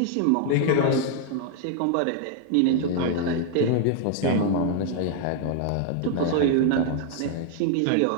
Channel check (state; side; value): different; both; correlation 0.00